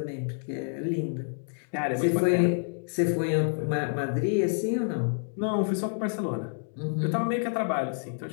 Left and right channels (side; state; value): right; silent; digital silence